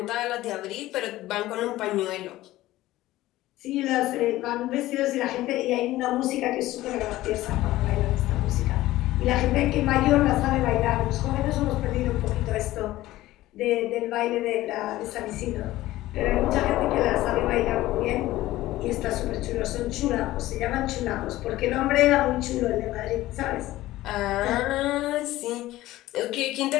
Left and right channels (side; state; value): right; quieter; 16.3 dB